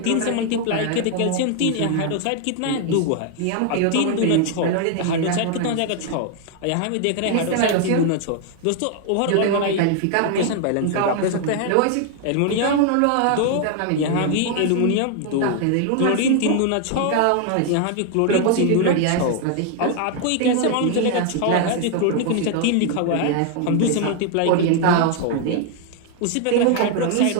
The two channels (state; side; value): different; both; correlation 0.00